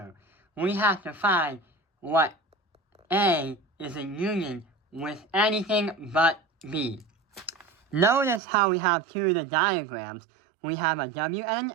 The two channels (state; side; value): drops out; left; at 8.4 s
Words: We have to find what A is in union with anything but B. Notice how we have 2 of the diagrams. We have a W and